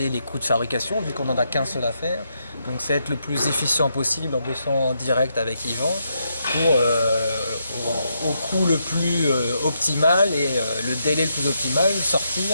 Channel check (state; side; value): inverted; both; correlation -0.80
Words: les coûts de fabrication, vu qu'on n'en a qu'un seul à faire. Donc c'est être le plus efficient possible en bossant en direct avec Yvan pour au coût le plus optimal et le délai le plus optimal